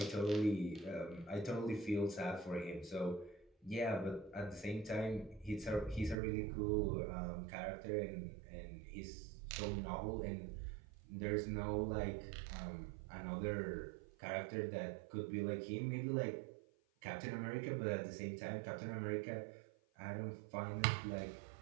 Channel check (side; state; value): left; drops out; at 6.2 s